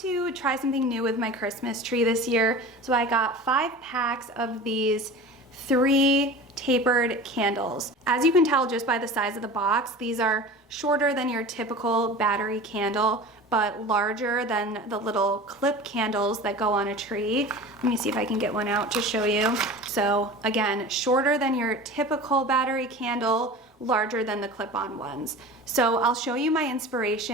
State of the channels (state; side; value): normal; both; correlation 0.36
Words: try something new with my Christmas tree this year. So I got 5 packs of these 3 tapered candles. As you can tell just by the size of the box, these are shorter than your typical battery candle, but larger than the little clip candles that go on a tree. Let me see if I can get one out to show you. So again, shorter than your typical battery candle, larger than the clip-on ones. So I'll show you my